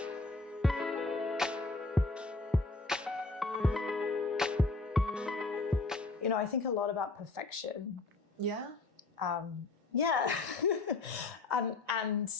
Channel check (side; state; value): right; quieter; 3.4 dB